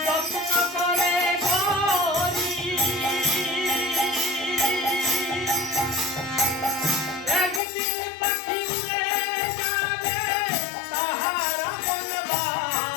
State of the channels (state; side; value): drops out; right; at 7.6 s